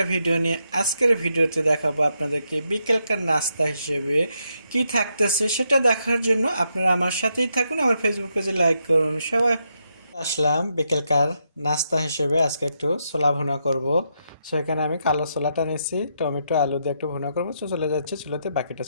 ভিডিও নিয়ে। আজকের ভিডিওতে দেখাবো আপনাদেরকে বিকেলকার নাস্তা হিসেবে কি থাকতেছে সেটা দেখার জন্য আপনারা আমার সাথেই থাকুন। আমার ফেসবুক পেজে লাইক করুন। সবাই আসলাম বিকেলকার নাস্তা হিসেবে আজকে একটু ছোলা ভুনা করব। সো এখানে আমি কালো ছোলাটা নিয়েছি, টমেটো আলু দিয়ে একটু ভুনা করবো। সো চলে যাচ্ছে চুলোতে, বাকিটা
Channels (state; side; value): inverted; both; correlation -0.80